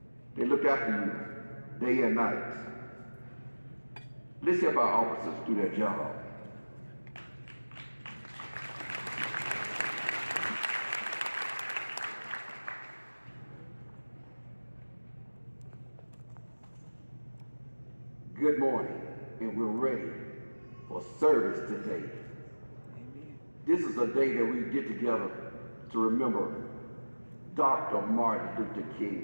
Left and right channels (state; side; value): inverted; both; correlation -1.00